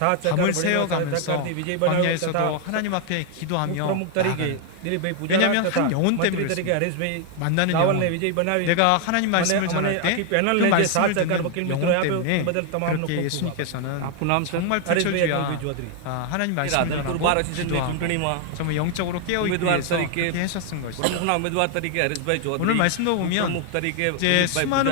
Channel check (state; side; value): different; both; correlation 0.00